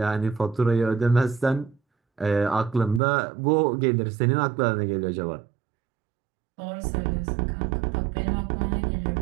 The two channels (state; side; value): drops out; left; at 3.0 s